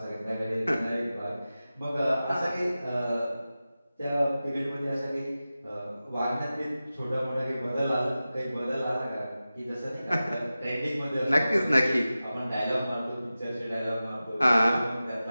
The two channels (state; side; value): inverted; both; correlation -0.95